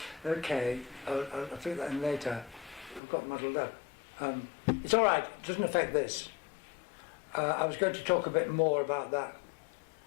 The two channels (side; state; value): right; drops out; at 3.0 s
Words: Okay, I'll figure that in later. I've got muddled up. It's all right. It doesn't affect this. I was going to talk a bit more about